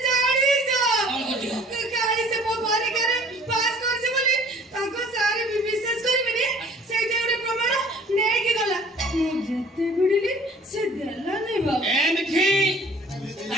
ଜାଣିଛ କାଲି ସେ ମୋ ପରୀକ୍ଷାରେ ପାସ୍ କରିছে ବୋଲି ତାଙ୍କ ସାର୍ ବିଶ୍ୱାସ କରିବେନି ସେଇଟା ଗୋଟେ ପ୍ରମାଣ ନେଇକି ଗଲା ମୁଁ ଯେତେ ଭିଡ଼ିଲି ସେ ଦେଲାନି ବାବା ଏମିତି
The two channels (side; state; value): both; normal; correlation 0.52